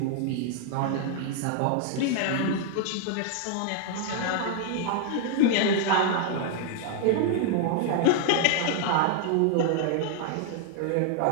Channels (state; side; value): different; both; correlation 0.00